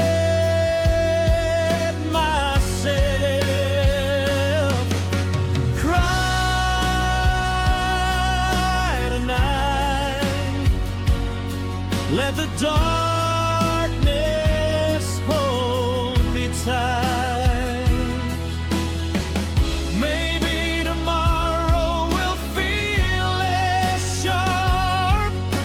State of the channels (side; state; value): both; identical; correlation 1.00